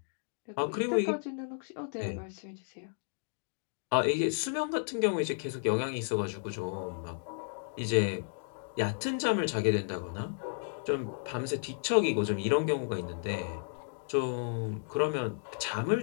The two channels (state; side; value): silent; right; digital silence